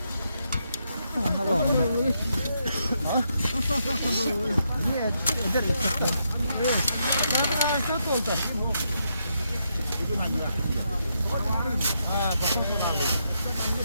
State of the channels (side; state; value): both; inverted; correlation -0.80